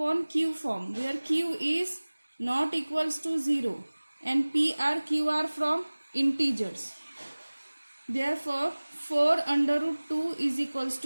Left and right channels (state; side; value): inverted; both; correlation -1.00